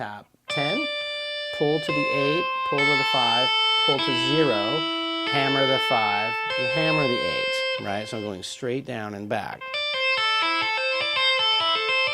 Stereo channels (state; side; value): identical; both; correlation 1.00